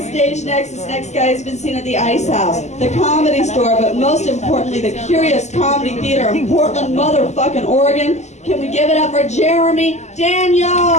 stage next, this next guy has been seen at the Ice House, the Comedy Store, but most importantly, the Curious Comedy Theater in Portland, motherfucking Oregon. Can we give it up for Jeremy Daniel?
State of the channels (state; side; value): late; right; 0.33 ms